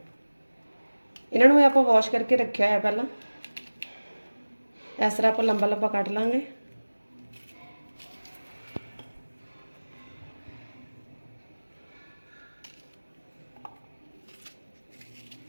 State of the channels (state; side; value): inverted; both; correlation -1.00